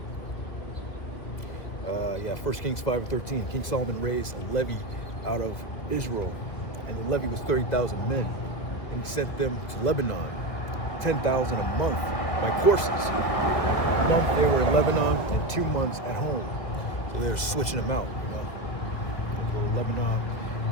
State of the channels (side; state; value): right; late; 2.3 ms